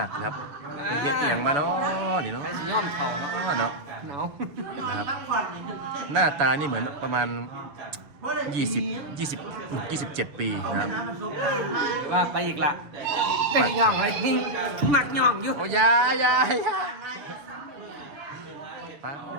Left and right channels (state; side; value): late; left; 6.7 ms